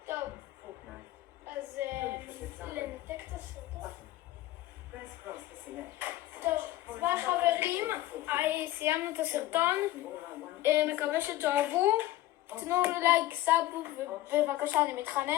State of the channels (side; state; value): right; quieter; 15.6 dB